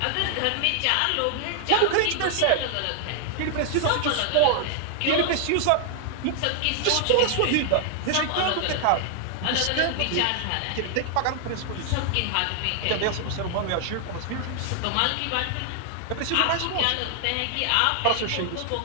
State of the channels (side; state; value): both; different; correlation 0.00